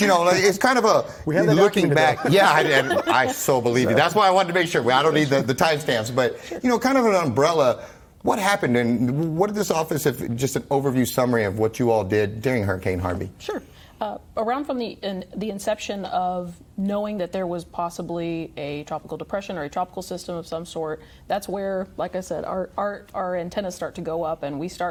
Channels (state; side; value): identical; both; correlation 1.00